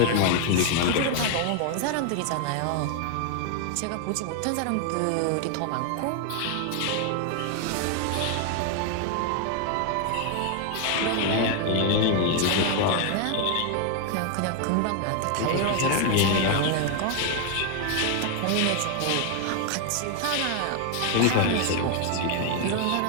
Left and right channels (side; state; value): both; different; correlation 0.00